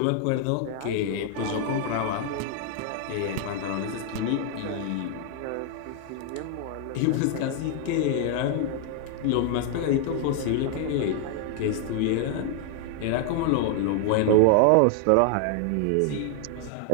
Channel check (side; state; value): both; different; correlation 0.00